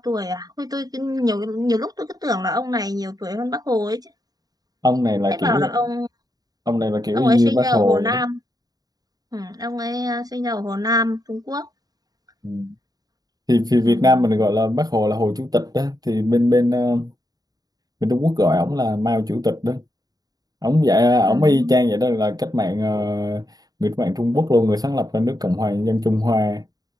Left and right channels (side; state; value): left; late; 0.18 ms